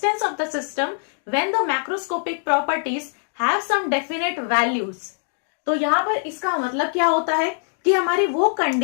of the system when the macroscopic properties have some definite values. तो यहां पर इसका मतलब क्या होता है कि हमारी वो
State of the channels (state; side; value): silent; right; digital silence